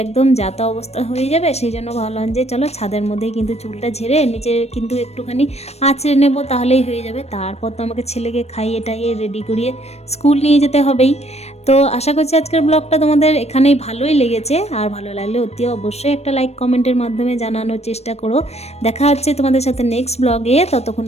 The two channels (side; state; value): right; late; 0.31 ms